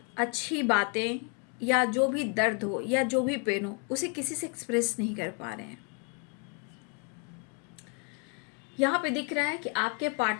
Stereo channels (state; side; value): quieter; right; 33.6 dB